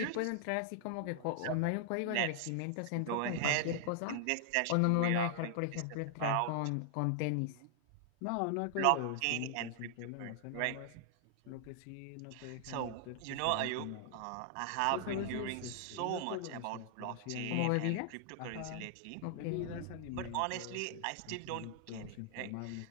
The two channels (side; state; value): both; different; correlation 0.00